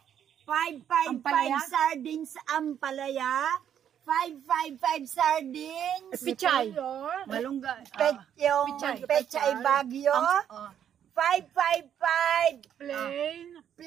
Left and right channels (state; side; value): quieter; left; 9.4 dB